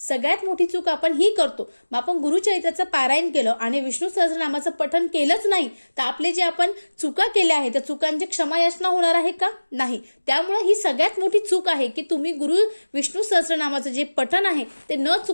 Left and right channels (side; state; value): both; inverted; correlation -1.00